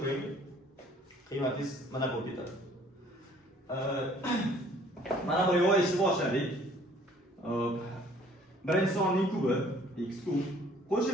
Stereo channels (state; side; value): normal; both; correlation 0.57